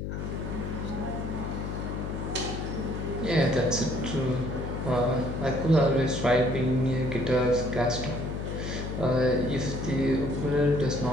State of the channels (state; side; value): noise; left; hum, 4 dB below the sound